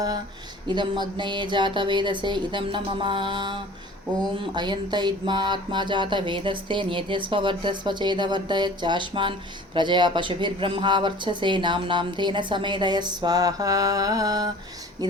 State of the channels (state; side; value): normal; both; correlation 0.44